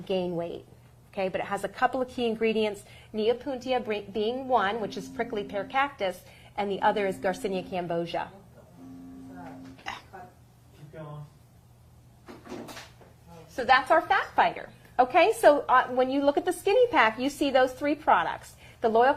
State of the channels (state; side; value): identical; both; correlation 1.00